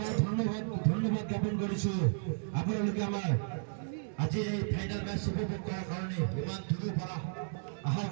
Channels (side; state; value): left; silent; digital silence